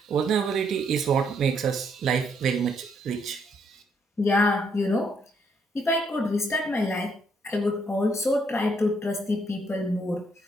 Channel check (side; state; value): both; normal; correlation 0.72